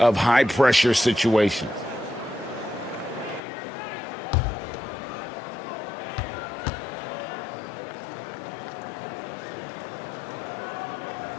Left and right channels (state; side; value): drops out; right; at 3.4 s